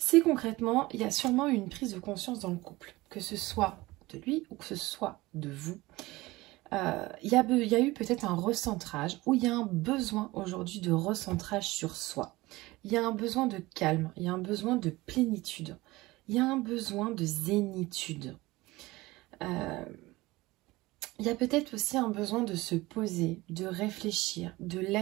concrètement, il y a sûrement une prise de conscience dans le couple, que ce soit de lui ou que ce soit de vous. Il y a eu peut-être un recentrage, ou il y a un besoin aujourd'hui de recentrage sur soi. Il y a un besoin de calme, il y a un besoin de plénitude, il y a un besoin de zénitude. Il y a peut-être aussi un besoin de se poser, de réfléchir, de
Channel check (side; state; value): left; quieter; 20.1 dB